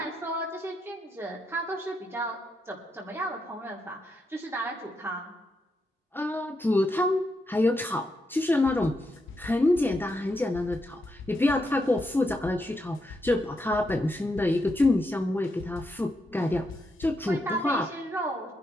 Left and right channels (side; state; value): both; normal; correlation 0.82